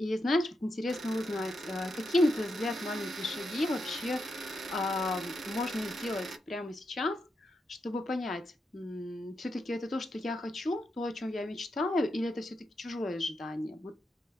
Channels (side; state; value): both; normal; correlation 0.84